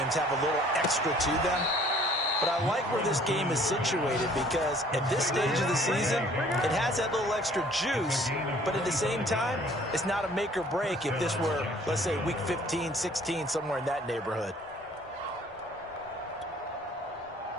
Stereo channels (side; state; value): both; normal; correlation 0.55